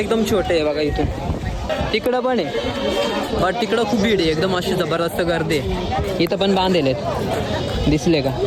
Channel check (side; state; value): both; identical; correlation 1.00